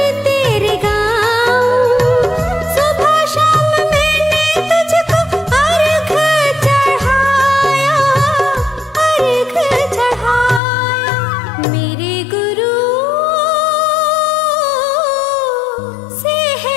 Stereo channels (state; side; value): drops out; right; at 10.6 s